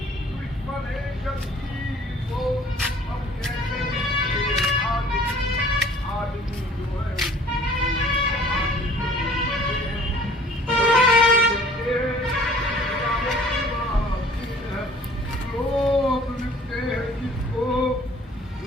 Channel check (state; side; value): normal; both; correlation 0.52